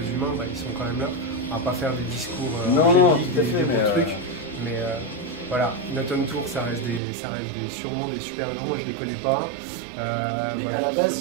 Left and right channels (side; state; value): left; drops out; at 7.0 s